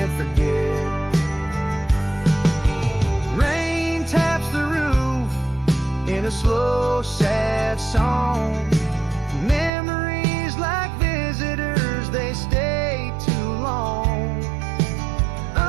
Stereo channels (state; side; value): drops out; left; at 9.7 s